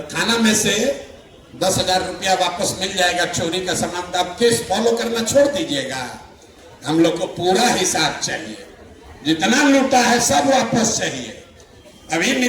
थाना में से 10,000 रुपया वापस मिल जाएगा चोरी का सामान, तो आप केस फॉलो करना छोड़ दीजिएगा। हम लोग को पूरा हिसाब चाहिए, जितना लूटा है सब वापस चाहिए। अभी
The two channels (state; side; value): identical; both; correlation 1.00